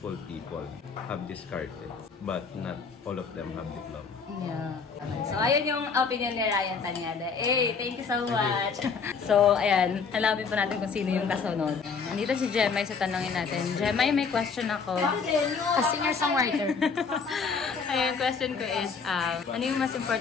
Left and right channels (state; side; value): quieter; right; 5.4 dB